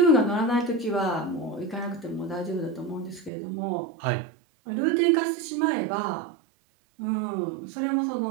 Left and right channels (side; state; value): left; drops out; at 3.3 s